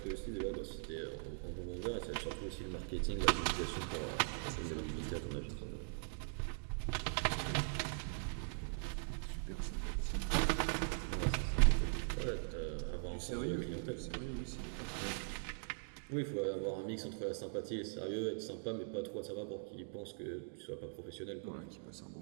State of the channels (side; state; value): left; silent; digital silence